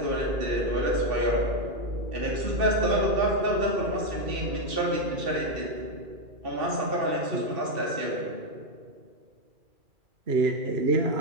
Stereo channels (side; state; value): left; late; 2.4 ms